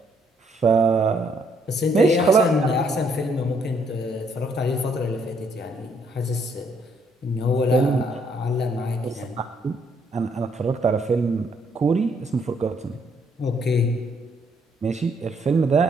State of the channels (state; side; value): normal; both; correlation 0.70